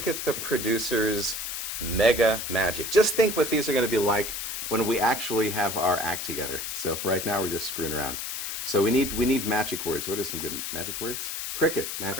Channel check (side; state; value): left; noise; hiss, 5 dB below the sound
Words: the producer's mega magic. Just think what these are going to be like when we actually have our act together. So for right now, we're just screwing around. So we need magic words. What are some good magic words? Cricket magic